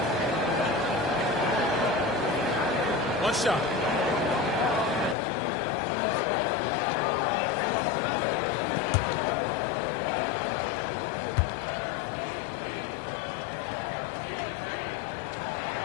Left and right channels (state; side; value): drops out; right; at 5.2 s